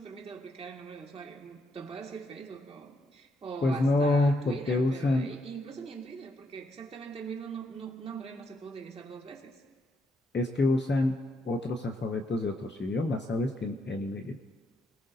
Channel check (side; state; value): both; normal; correlation 0.77